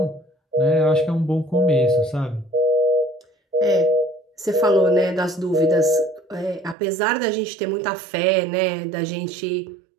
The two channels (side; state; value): left; drops out; at 6.8 s